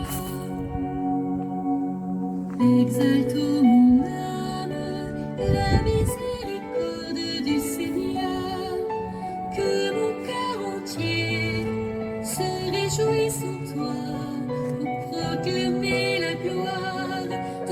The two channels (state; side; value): identical; both; correlation 1.00